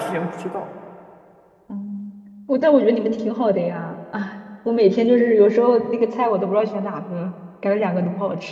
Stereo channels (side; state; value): both; identical; correlation 1.00